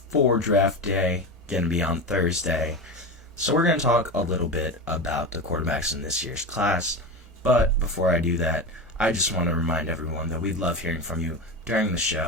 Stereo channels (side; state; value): both; normal; correlation 0.22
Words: draft day, going to be on Thursday. So we're going to talk a little bit about the quarterbacks in this year's class, but before I do that, I just want to remind everyone that we'd love hearing from you during the